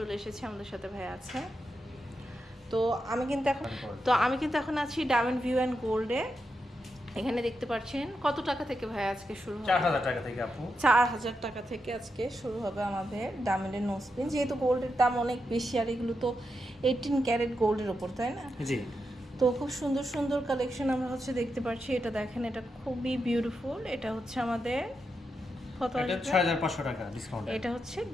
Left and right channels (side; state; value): both; normal; correlation 0.86